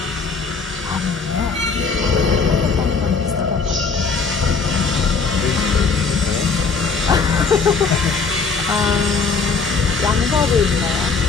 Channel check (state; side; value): quieter; right; 4.8 dB